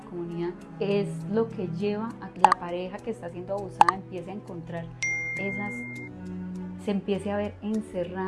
comunidad, es lo que lleva a que la pareja que está siendo abusada empiece a encontrar se empiece a ver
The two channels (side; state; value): both; identical; correlation 1.00